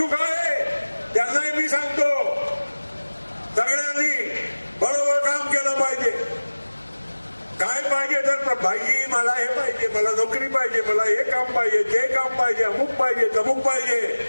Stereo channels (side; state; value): both; inverted; correlation -1.00